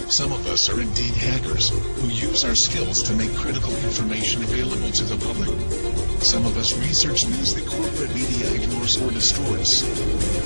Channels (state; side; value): inverted; both; correlation -1.00